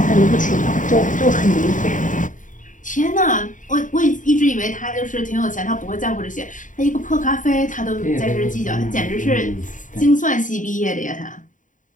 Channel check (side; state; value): right; late; 0.37 ms